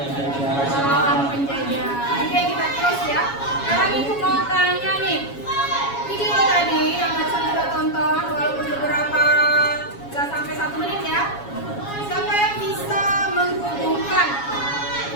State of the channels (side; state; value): right; late; 7.2 ms